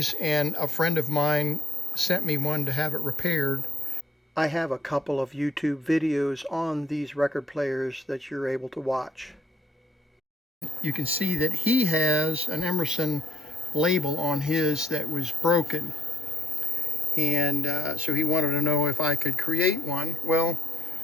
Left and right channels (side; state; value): both; normal; correlation 0.76